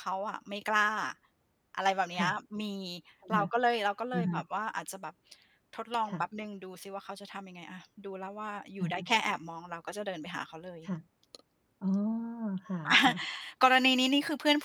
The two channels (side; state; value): both; identical; correlation 1.00